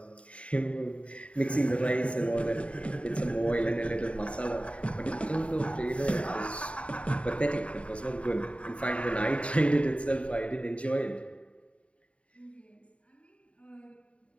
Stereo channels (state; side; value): late; right; 0.062 ms